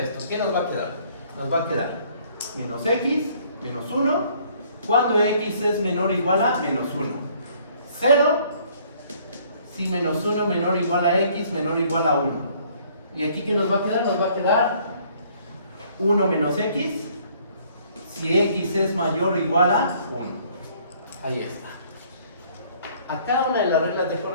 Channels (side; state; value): both; inverted; correlation -0.61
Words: ¿Qué nos va a quedar? Nos va a quedar menos x, menos 1, cuando x es menor o igual a menos 1. 0, si menos 1 menor o igual a x, menor o igual a 1. ¿Y aquí qué nos va a quedar? Nos va a quedar 1 menos x, si x es mayor o igual a 1. Ahí está. A cada una de las reglas de